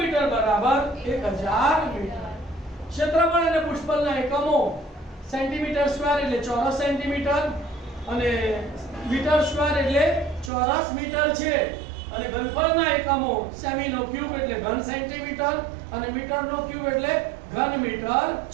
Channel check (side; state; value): left; drops out; at 10.5 s